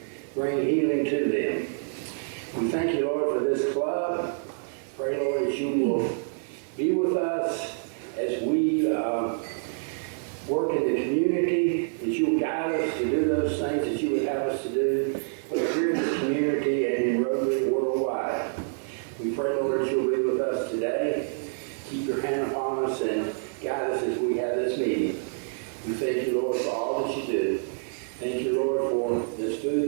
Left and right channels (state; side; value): silent; left; 55 dB below the other